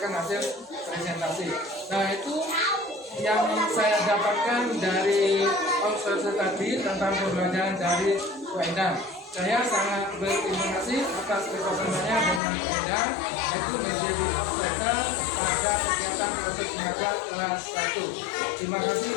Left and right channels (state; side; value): drops out; right; at 12.4 s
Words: hasil presentasi. Nah, itu yang saya dapatkan dari observasi tadi tentang pembelajaran dari Wendang. Saya sangat berterima kasih atas kerjasamanya dengan Wendang, yaitu menjadi observer pada kegiatan proses mengajar kelas 1. Terima kasih